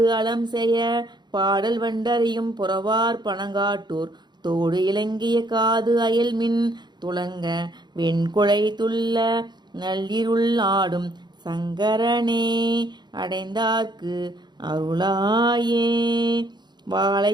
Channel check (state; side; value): late; left; 0.21 ms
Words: அலம் செய்ய பாடல் வண்டறியும் புறவார் பனங்காட்டூர் தோடு இலங்கிய காது அயல்மின் துளங்க வெண்குழை துள்ள நள்ளிருள் ஆடும் சங்கரனே அடைந்தார்க்கு அருளாயே.